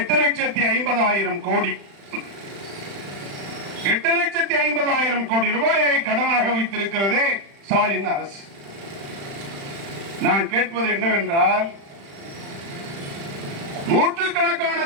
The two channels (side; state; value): left; late; 35 ms